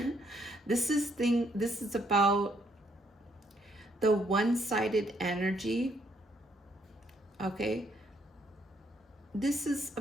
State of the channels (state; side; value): normal; both; correlation 0.71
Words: This is about the one-sided energy. Okay, this is